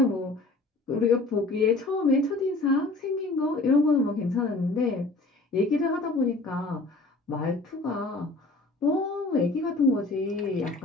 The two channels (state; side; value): quieter; right; 3.1 dB